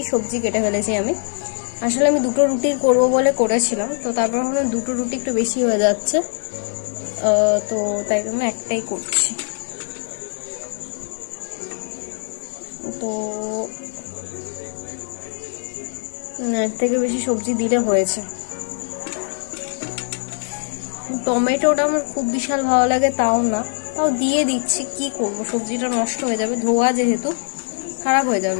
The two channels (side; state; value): right; silent; 62 dB below the other